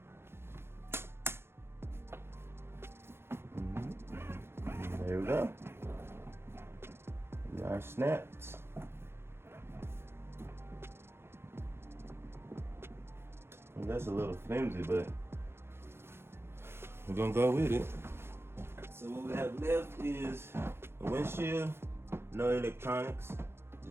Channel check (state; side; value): late; left; 0.12 ms